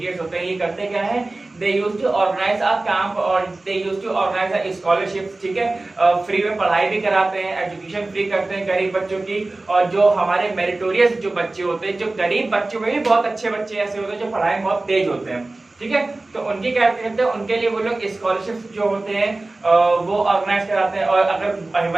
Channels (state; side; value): quieter; left; 3.0 dB